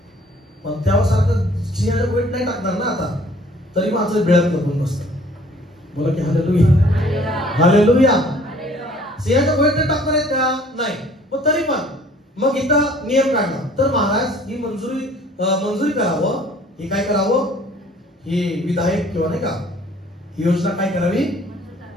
पण त्यासारखं सिंहाच्या गुहेत नाही टाकणार ना आता. तरी माणसं बिळत लपून बसतात. बोला की हालेलुया. हालेलुया. सिंहाच्या गुहेत टाकणार आहेत का? नाही. पण तरी पण मग इथं नियम काढला तर महाराज ही मंजुरी करावं, हे काय करावं, ही विधायक किंवा नाही का ही योजना काय करावी.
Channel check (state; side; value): normal; both; correlation 0.55